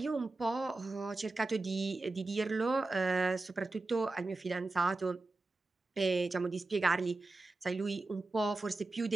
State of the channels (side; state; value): left; quieter; 3.2 dB